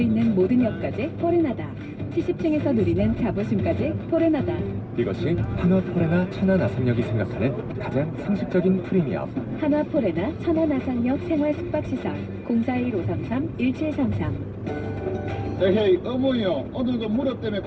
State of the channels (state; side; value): identical; both; correlation 1.00